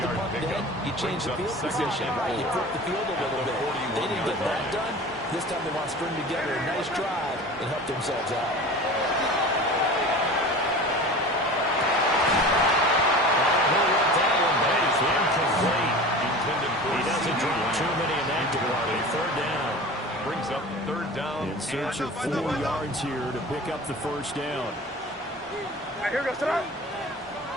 to punt dead, you change the field position, right? You flip the field a little bit. They didn't get that done. This time they want to string together a nice drive and help themselves out. He doesn't drop too many in that department. Third down. Brings up third down. In search of 4 yards here to pick up the first down. All right, here we go. Sit up.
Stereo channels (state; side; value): normal; both; correlation 0.37